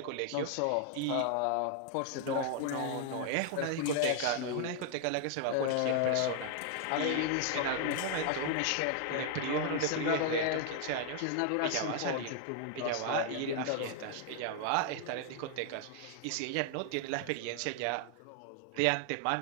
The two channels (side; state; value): both; different; correlation 0.00